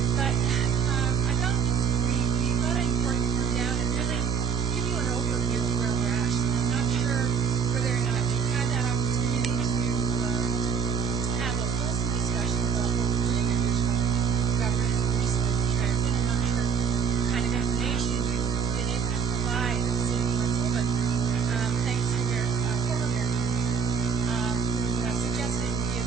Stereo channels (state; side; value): quieter; left; 6.6 dB